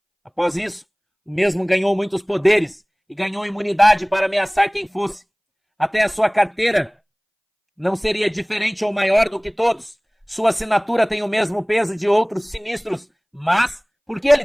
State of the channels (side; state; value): both; identical; correlation 1.00